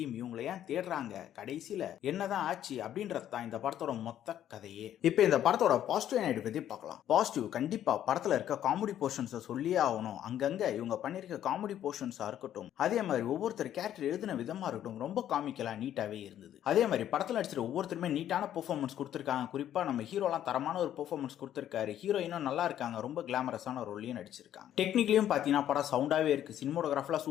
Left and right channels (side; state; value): right; quieter; 11.1 dB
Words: இவங்களை ஏன் தேடுறாங்க, கடைசியில என்னதான் ஆச்சு அப்படின்றது தான் இந்த படத்தோட மொத்த கதையே. இப்போ இந்த படத்தோட பாசிட்டிவ் நைட் பத்தி பார்க்கலாம். பாசிட்டிவ் கண்டிப்பா படத்துல இருக்க காமெடி போர்ஷன்ஸ் சொல்லியே ஆகணும். அங்கங்க இவங்க பண்ணிருக்க காமெடி போர்ஷன்ஸா இருக்கட்டும், அதே மாதிரி ஒவ்வொருத்தர் கேரக்டர் எழுதின விதமா இருக்கட்டும், ரொம்ப காமிக்கலா நீட்டாவே இருந்தது. அதே மாதிரி படத்துல நடிச்சிருக்க ஒவ்வொருத்தருமே நீட்டான பெர்ஃபார்மன்ஸ் கொடுத்திருக்காங்க. குறிப்பா நம்ம ஹீரோலாம் தரமான ஒரு பெர்ஃபார்மன்ஸ் கொடுத்திருக்காரு. ஹீரோயினும் நல்லா இருக்காங்க, ரொம்ப கிளாமரஸான ரோல்லையும் நடிச்சிருக்காங்க. டெக்னிக்கலியும் பாத்தீங்கன்னா படம் சவுண்டாவே இருக்கு. சினிமோட்டோகிராஃபில